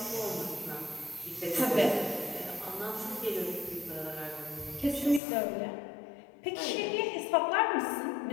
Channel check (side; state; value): right; drops out; at 5.2 s